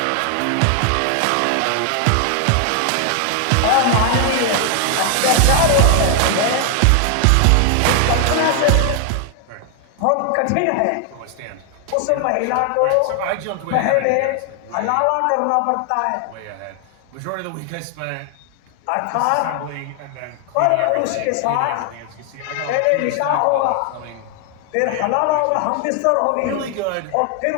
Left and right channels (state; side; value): different; both; correlation 0.00